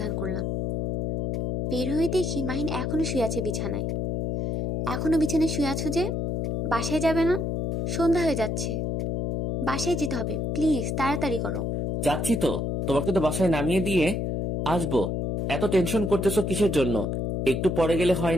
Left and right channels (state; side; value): noise; left; hum, 1 dB below the sound